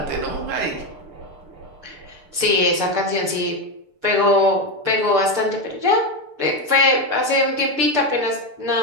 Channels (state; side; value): late; left; 6.8 ms